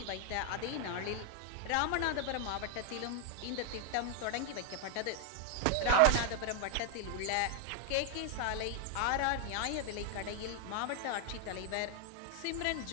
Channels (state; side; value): different; both; correlation 0.00